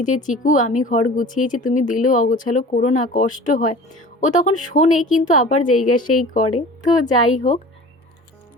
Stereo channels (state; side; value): normal; both; correlation 0.41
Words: যে চিকু আমি ঘর গুছিয়েছি তুমি দিলেও অগোছালো করো না, কষ্ট হয়, ও তখন শোনে কিন্তু আবার জায়গা সেই করে। তো যাই হোক,